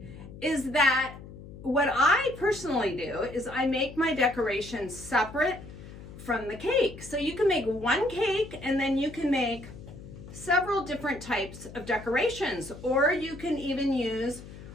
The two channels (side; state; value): left; noise; hum, 15 dB below the sound